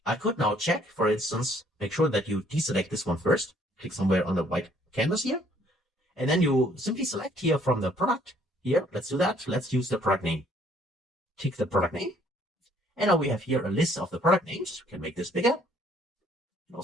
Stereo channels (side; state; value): both; normal; correlation 0.63